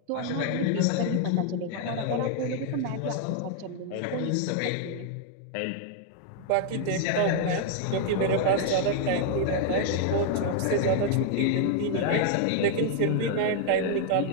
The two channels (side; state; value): both; different; correlation 0.00